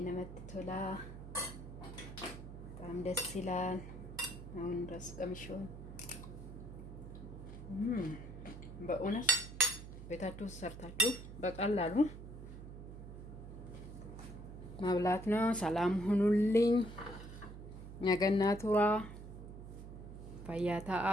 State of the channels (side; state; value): right; noise; hum, 12 dB below the sound